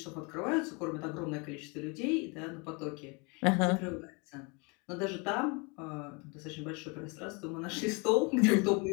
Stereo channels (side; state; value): right; quieter; 30.9 dB